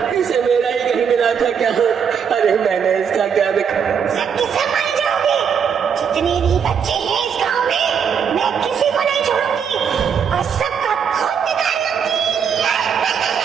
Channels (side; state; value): left; quieter; 7.2 dB